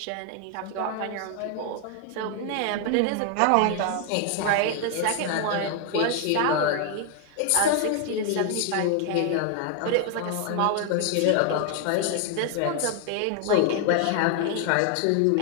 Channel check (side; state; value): both; different; correlation 0.00